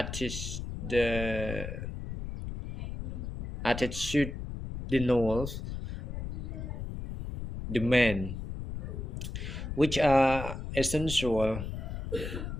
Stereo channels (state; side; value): noise; left; rumble, 6 dB below the sound